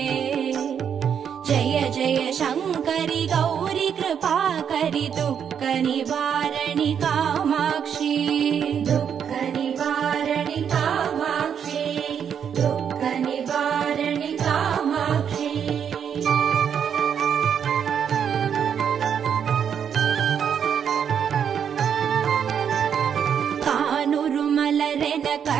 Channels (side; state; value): left; quieter; 8.0 dB